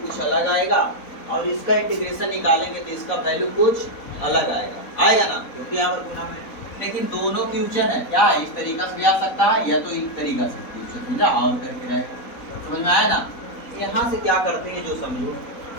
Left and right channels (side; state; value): right; late; 4.0 ms